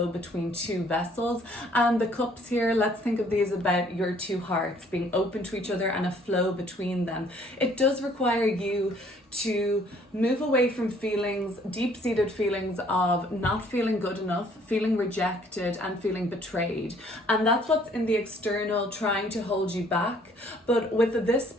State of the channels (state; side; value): normal; both; correlation 0.60